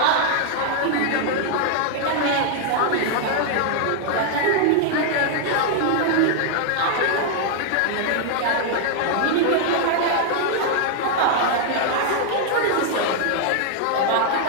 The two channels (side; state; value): both; different; correlation 0.00